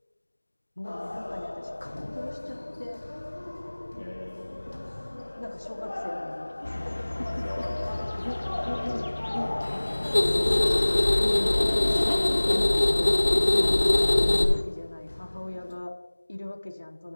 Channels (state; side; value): inverted; both; correlation -1.00